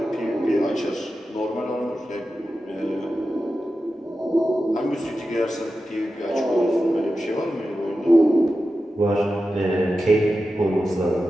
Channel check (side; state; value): both; normal; correlation 0.92